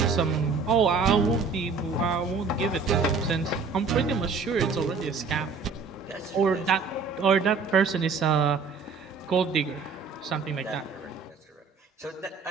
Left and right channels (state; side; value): quieter; left; 4.8 dB